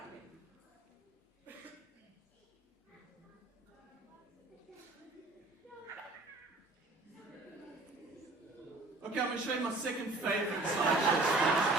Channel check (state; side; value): quieter; left; 3.2 dB